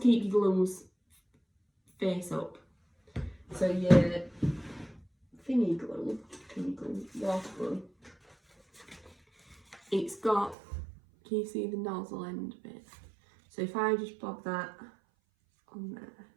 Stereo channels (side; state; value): left; drops out; at 10.6 s